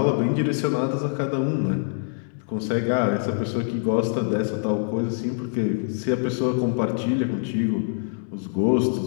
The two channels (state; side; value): silent; right; digital silence